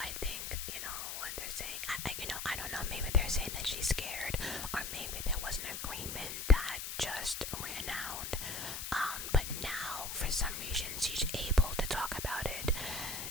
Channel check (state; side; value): noise; left; hiss, 5 dB below the sound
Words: think, you know, what they're saying, I don't know, maybe they're saying that she's scared, or maybe there was an agreement that just ran out. But now, for some reason, she's able to talk about it.